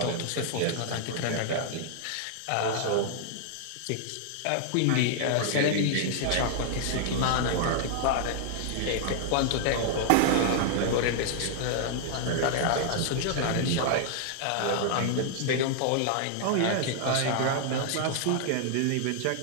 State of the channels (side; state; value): both; different; correlation 0.00